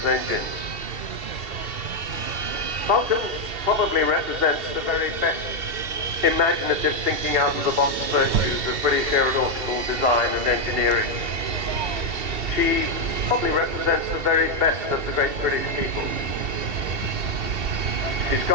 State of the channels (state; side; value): late; left; 2.7 ms